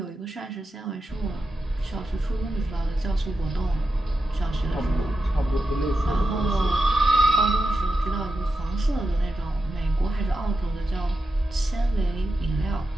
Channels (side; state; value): both; normal; correlation 0.89